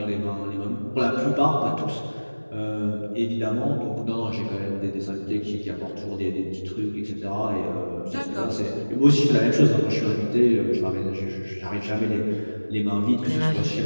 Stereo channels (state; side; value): inverted; both; correlation -1.00